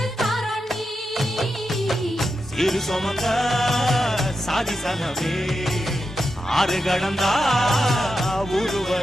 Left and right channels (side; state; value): both; normal; correlation 0.88